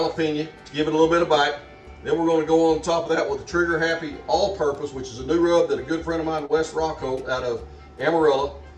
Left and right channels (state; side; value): identical; both; correlation 1.00